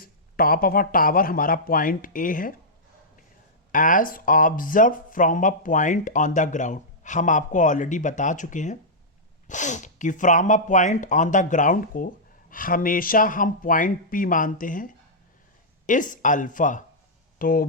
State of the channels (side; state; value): both; normal; correlation -0.11